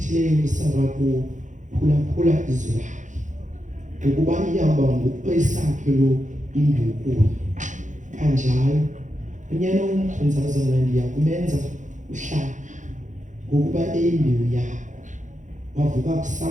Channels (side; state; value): left; late; 0.36 ms